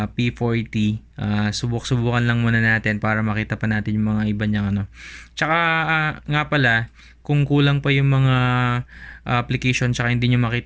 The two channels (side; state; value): both; identical; correlation 1.00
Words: P40. Subukan lang muna natin para makita pa natin yung mga iba niyang Tsaka nga pala, kung kulang pa yung mga application tsaka hindi nyo